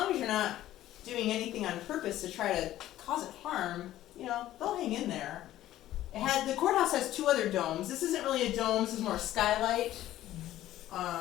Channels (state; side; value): quieter; right; 13.8 dB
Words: as you're not doing anything on purpose to try to cause it harm, you know, they'll hang in there. The courthouse has 2 other domes. This isn't really a dome, this is more a skylight.